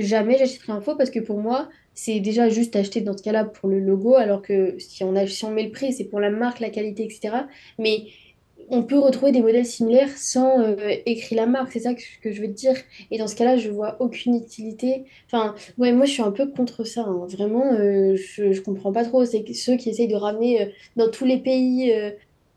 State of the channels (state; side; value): identical; both; correlation 1.00